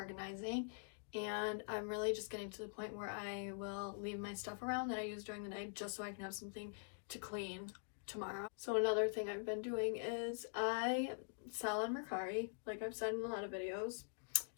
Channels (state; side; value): silent; right; digital silence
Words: and I'm really just getting to the point where I will leave my stuff around that I use during the day just so I can have something to clean tomorrow. So another thing I've been doing is I sell on Mercari, like I've said in a lot of videos. I